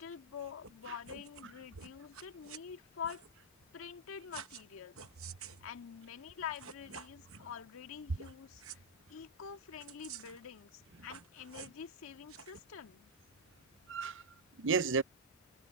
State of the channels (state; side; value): normal; both; correlation -0.05